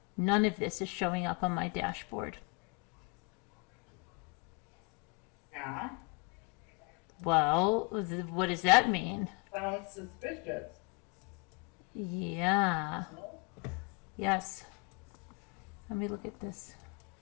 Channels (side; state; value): right; quieter; 31.6 dB